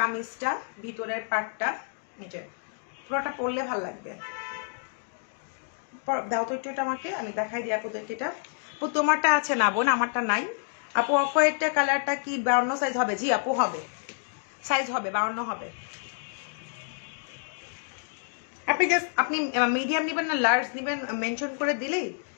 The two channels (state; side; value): silent; right; digital silence